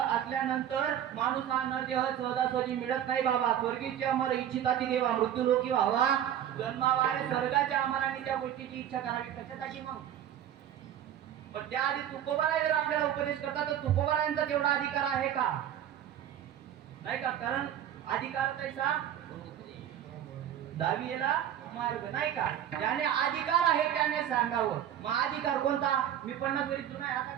माणूस हा नरदेह सहजासहजी मिळत नाही बाबा. स्वर्गीची अमर इच्छिताची देवा मृत्यू लोकी व्हावा, जन्मावा. अरे स्वर्गाच्या अमराने त्या गोष्टीची इच्छा करावी कशासाठी मग. पण त्याआधी तुकोबाराय जर आपल्याला उपदेश करतात तर तुकोबारायांचा तेवढा अधिकार आहे का? नाही का. कारण अधिकार तैसा दावियेला मार्ग नाही का. ज्याने अधिकार आहे त्याने सांगावं. मग अधिकार कोणता? मी 50 वरी जुना आहे आता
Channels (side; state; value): left; quieter; 10.5 dB